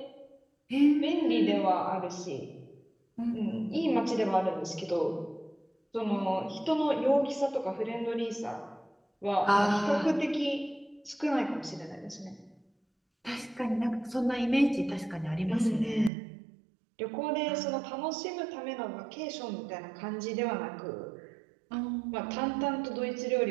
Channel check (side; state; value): left; drops out; at 16.1 s